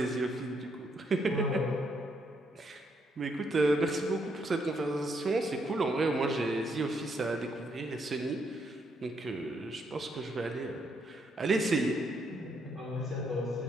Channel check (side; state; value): both; normal; correlation 0.75